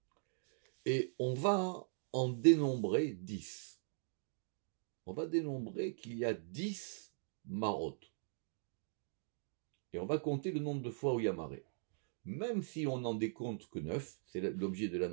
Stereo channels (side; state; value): left; silent; digital silence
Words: Et on va en dénombrer 10. On va dénombrer qu'il y a 10 marot. Et on va compter le nombre de fois où il y a marée. Même si on n'en décompte que 9, c'est l'objet de la